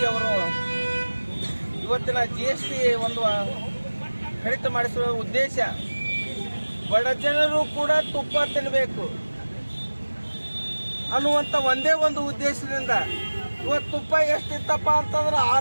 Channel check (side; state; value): both; inverted; correlation -1.00